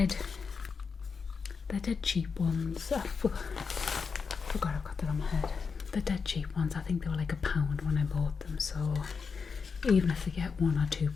They're dead cheap ones. I forgot I've got that on my head. They're dead cheap ones. I think they were like £1 when I bought them, so even if they get 1 or 2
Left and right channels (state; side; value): quieter; right; 5.4 dB